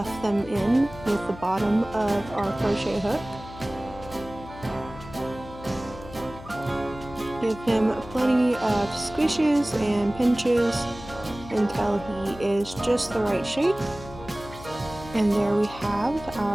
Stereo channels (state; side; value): noise; left; hum, 16 dB below the sound